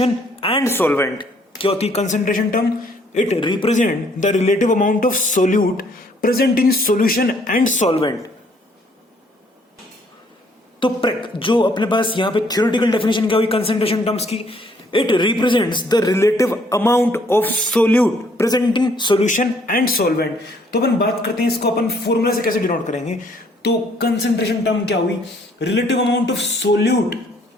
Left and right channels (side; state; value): both; normal; correlation 0.64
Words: and solvent. क्या होती है concentration term? It represent the relative amount of solute present in solution and solvent. तो जो अपने पास यहां पे थ्योरेटिकल डेफिनेशन क्या हुई कंसंट्रेशन टर्म्स की? It represents the relative amount of solute present in solution and solvent. तो अपन बात करते हैं इसको अपन फॉर्मूला से कैसे डिनोट करेंगे। तो कंसंट्रेशन टर्म क्या हुई? Relative amount of solute